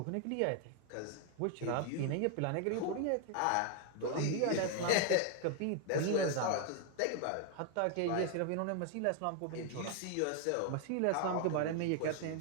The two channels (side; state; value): both; different; correlation 0.00